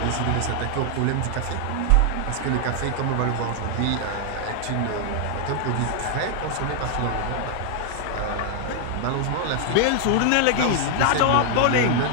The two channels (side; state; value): both; different; correlation 0.00